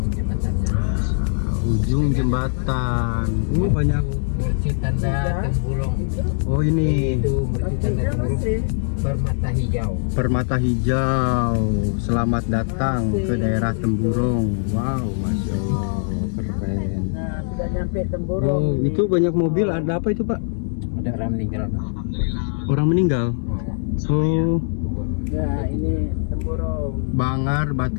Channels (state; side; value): silent; right; 61 dB below the other